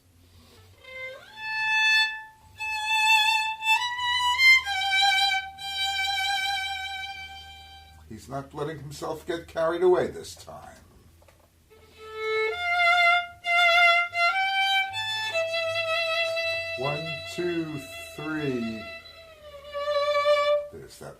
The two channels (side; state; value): both; identical; correlation 1.00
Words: He's not letting himself get carried away this time. One, 2, 3. There's